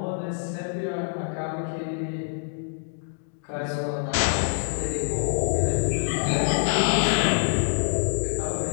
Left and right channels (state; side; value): silent; right; digital silence